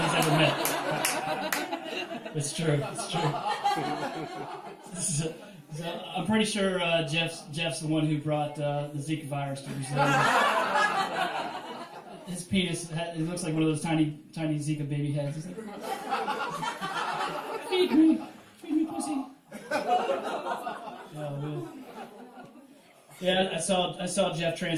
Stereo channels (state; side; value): identical; both; correlation 1.00